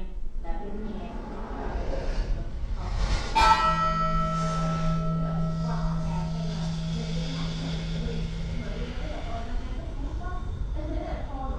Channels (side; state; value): both; identical; correlation 1.00